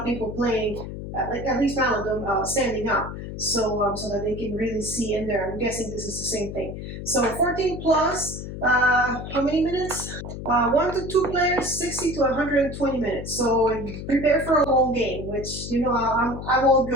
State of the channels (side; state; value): left; noise; hum, 8 dB below the sound